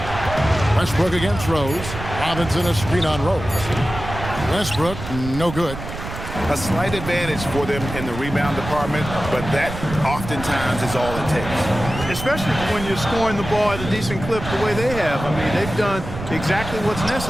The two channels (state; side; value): noise; right; rumble, 9 dB below the sound